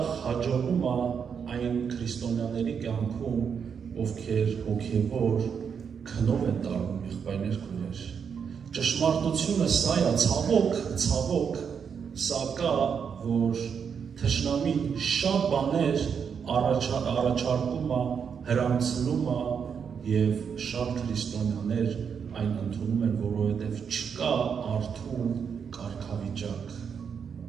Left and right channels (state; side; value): quieter; left; 6.9 dB